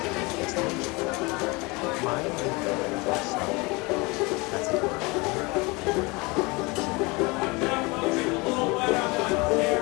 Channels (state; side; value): quieter; right; 25.7 dB